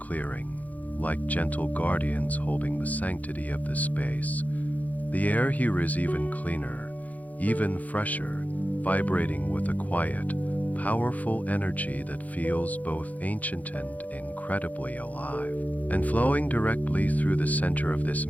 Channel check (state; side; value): late; right; 0.077 ms